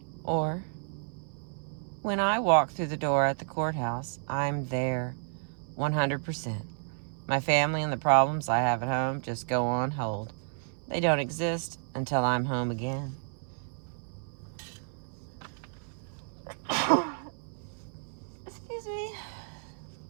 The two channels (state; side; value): silent; left; 57 dB below the other